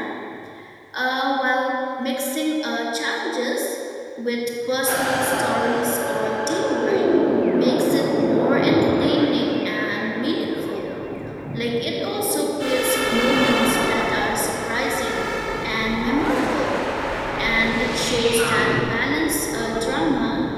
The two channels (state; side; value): identical; both; correlation 1.00